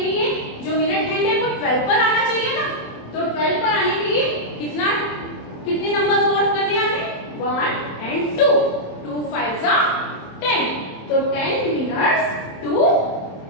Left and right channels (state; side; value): late; right; 27 ms